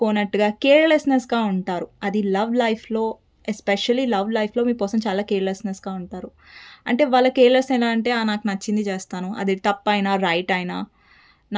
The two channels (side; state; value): both; identical; correlation 1.00